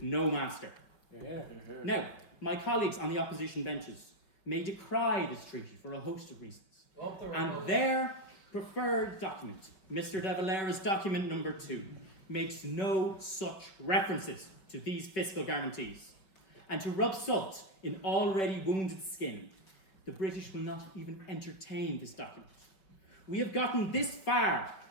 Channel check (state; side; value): late; right; 5.2 ms